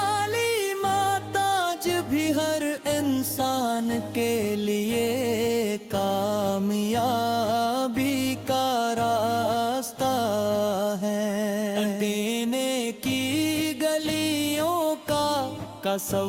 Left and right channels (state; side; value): identical; both; correlation 1.00